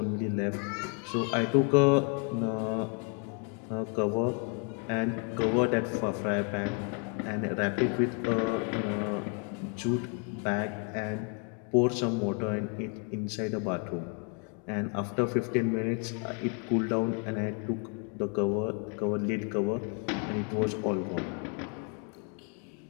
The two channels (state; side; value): quieter; right; 39.7 dB